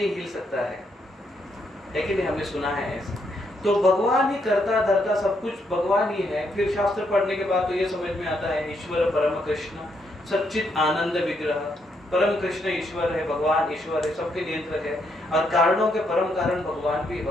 हिल सकता है कि नहीं? हमने सुना है ऐसा। तो भगवान ही करता धरता सब कुछ भगवान ही है। फिर शास्त्र पढ़ने के बाद तो ये समझ में आता है, ईश्वर परम कृष्ण सच्चित आनंद विग्रह, परम कृष्ण ईश्वर है, भगवान ईश्वर है, सबके नियंत्रक है, और कारणों के परम कारण भगवान भी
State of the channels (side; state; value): both; normal; correlation 0.76